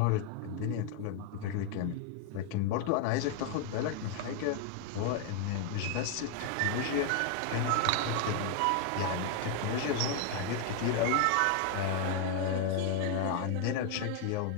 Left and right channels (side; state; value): both; different; correlation 0.00